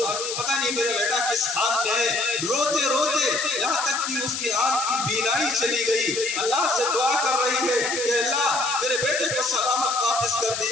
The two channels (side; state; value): left; noise; hiss, 4 dB below the sound